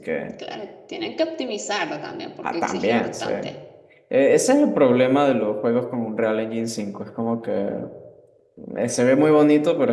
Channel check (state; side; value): identical; both; correlation 1.00